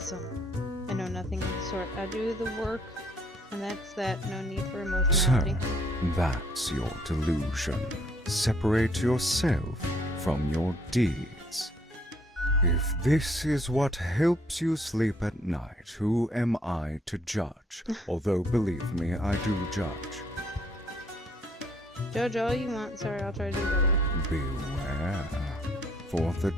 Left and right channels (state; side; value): normal; both; correlation 0.65